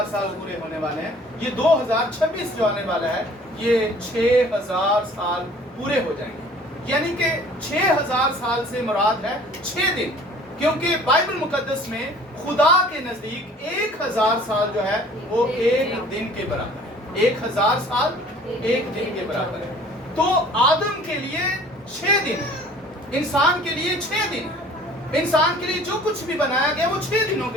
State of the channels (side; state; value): both; normal; correlation 0.51